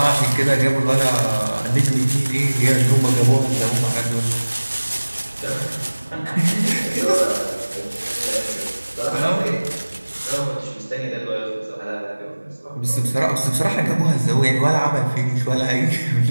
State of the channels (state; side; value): inverted; both; correlation -1.00